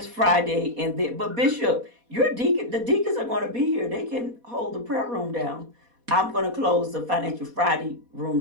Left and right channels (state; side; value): late; left; 4.2 ms